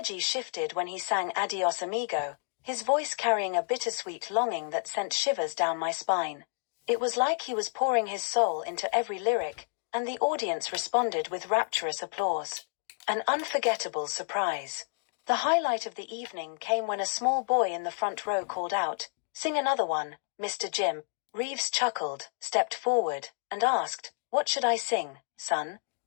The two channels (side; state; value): right; silent; digital silence